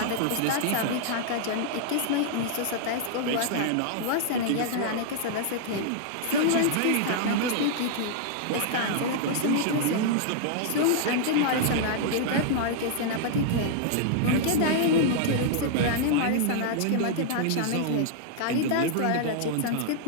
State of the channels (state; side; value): different; both; correlation -0.01